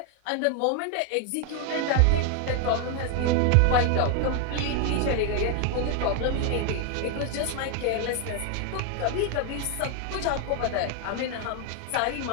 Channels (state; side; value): different; both; correlation 0.01